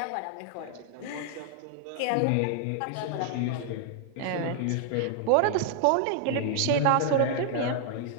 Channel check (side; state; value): both; different; correlation 0.00